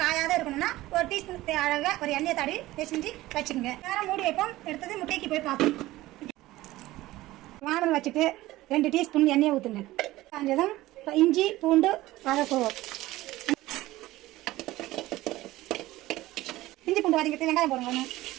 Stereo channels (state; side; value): quieter; left; 17.2 dB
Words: காயாத இருக்கணும்னா 1 டீஸ்பூன் அழகாக ஒரு எண்ணெயை தடவி பிசைஞ்சு வச்சுக்கோங்க. நேரம் மூடி வைப்போம். எடுத்தது முட்டைக்கு போய் பார்ப்போம். வானல் வச்சுட்டு 2 டீஸ்பூன் எண்ணெயை ஊற்றுங்க. காஞ்சதும் இஞ்சி பூண்டு வதக்குவோம். இஞ்சி பூண்டு வதங்கிட்டு வெங்காயம் போடுங்க.